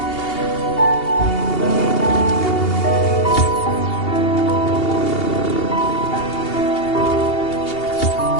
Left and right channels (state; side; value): late; right; 2.8 ms